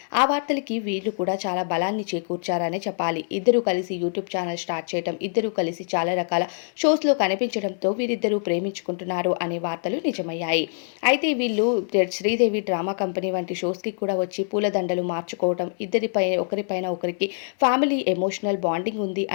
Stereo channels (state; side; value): silent; right; digital silence